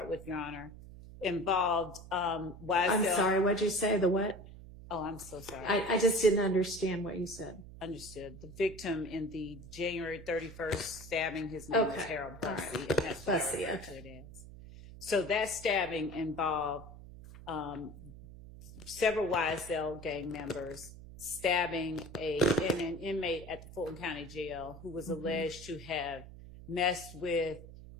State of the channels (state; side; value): noise; right; hum, 15 dB below the sound